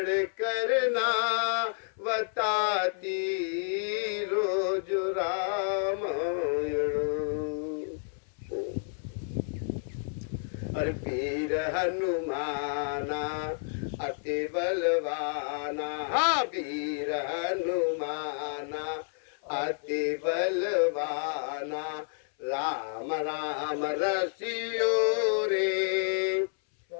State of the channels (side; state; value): right; silent; 58 dB below the other